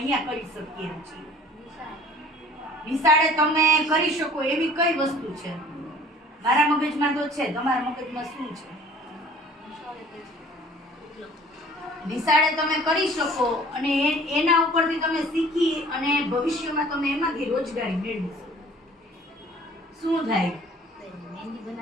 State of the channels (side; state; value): both; normal; correlation 0.50